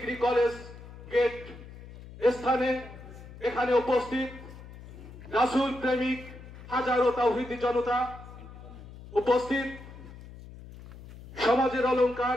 কলেজ গেট স্থানে এখানে উপস্থিত রাসূল প্রেমিক হাজারো তাওহীদি জনতা, উপস্থিত সমাজের অলংকার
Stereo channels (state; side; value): noise; left; hum, 16 dB below the sound